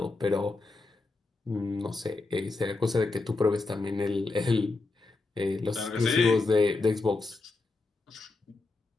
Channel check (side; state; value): right; quieter; 3.5 dB